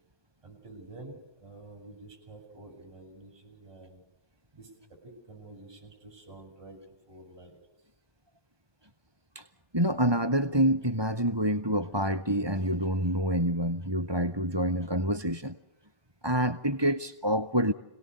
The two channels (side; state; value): left; late; 1.2 ms